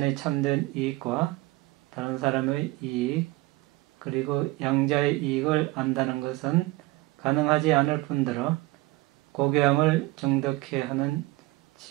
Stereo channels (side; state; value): left; quieter; 19.8 dB